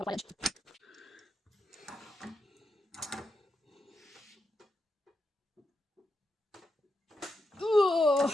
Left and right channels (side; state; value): both; normal; correlation 0.85